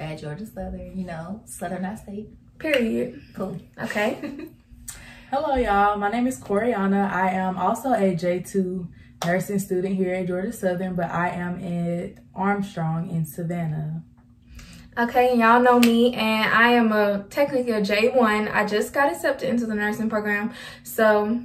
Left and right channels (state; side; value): identical; both; correlation 1.00